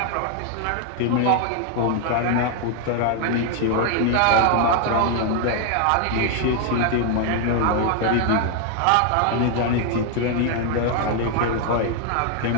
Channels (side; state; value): both; different; correlation 0.00